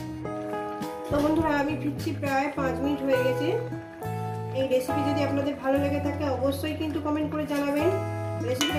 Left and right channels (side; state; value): both; identical; correlation 1.00